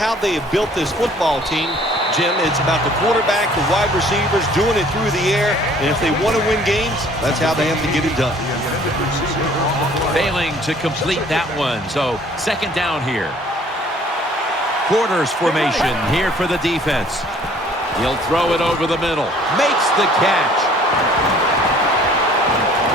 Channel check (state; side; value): normal; both; correlation 0.55